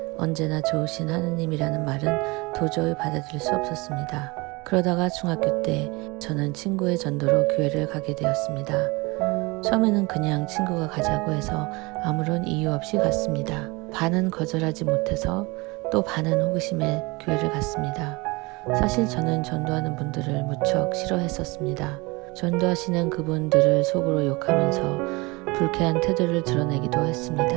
언제나 좋으신 하나님이라는 말은 도저히 받아들일 수 없었습니다. 그러다가 중학교 때 저는 친구의 전도로 교회를 가게 되었습니다. 처음에는 그냥 친구가 가자고 해서 아무런 이유 없이 갔습니다. 반은 거절하지 못해서 또 반은 호기심에 교회를 갔습니다. 사실 저는 전도하는 분들을 무척 싫어했었습니다. 전도하시는 그분들을 속으로 욕하면서 불쾌한 태도를 드러내기도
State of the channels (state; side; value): quieter; left; 25.0 dB